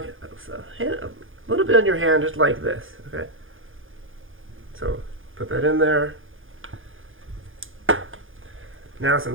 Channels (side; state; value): left; late; 0.59 ms